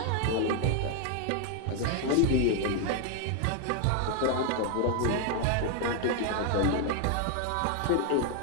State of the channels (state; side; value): different; both; correlation 0.01